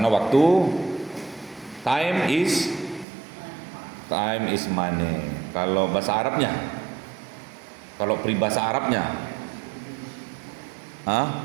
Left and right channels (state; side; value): drops out; left; at 3.1 s